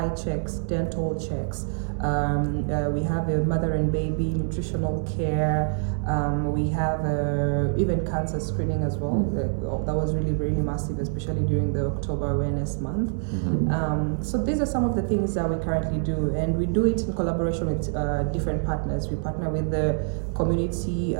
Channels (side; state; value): left; silent; 61 dB below the other